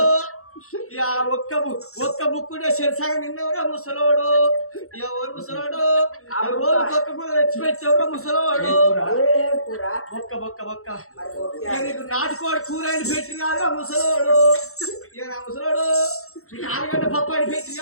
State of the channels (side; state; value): right; late; 0.63 ms